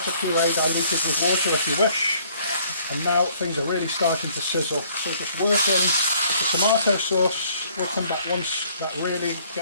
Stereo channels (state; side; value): inverted; both; correlation -0.61